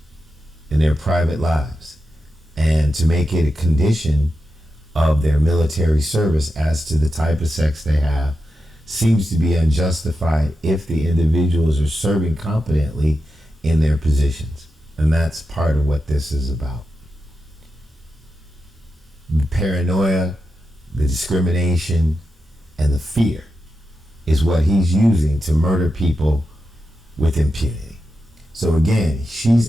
in their private lives, and to make it a condition of their military service as to the type of sex they have seems to be unjustified if the individuals are serving competently in their positions. And that's part of what this is about. The paranoia, the discrimination, and the fear is what he's using to murder people with impunity. So again,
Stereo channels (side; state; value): both; normal; correlation 0.89